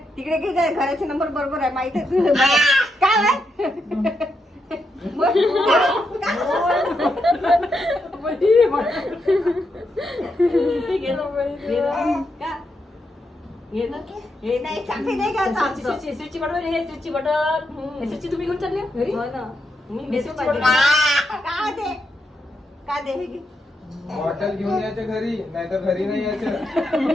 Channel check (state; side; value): normal; both; correlation 0.82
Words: तिकडे की काय घराचे नंबर बरोबर आहे माहिती आहे तुला काय आहे? मग का? हे ना? हे नाही चाकरी नाही का आमचं? स्विचची बटन हे स्विचची बटन स्विचची तुम्ही घेऊन चालले घरी हो ना. मी हे स्विचची बटन. बटन का दे का दे हे घे. बॉटल घेऊन यायचं घरी नाही तर घरी नाही यायचं.